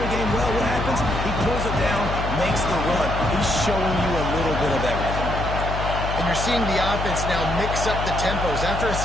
game well. What happens? He pulls it down, makes the run. He's showing you a little bit of everything. And you're seeing the offense now mix up the tempos. After a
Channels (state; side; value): noise; left; hum, 4 dB below the sound